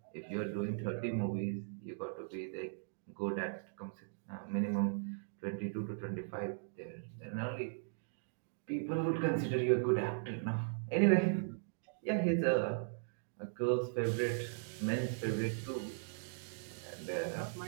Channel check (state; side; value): silent; left; digital silence